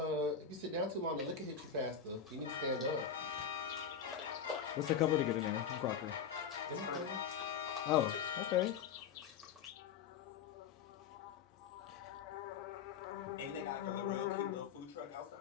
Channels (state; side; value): quieter; right; 7.1 dB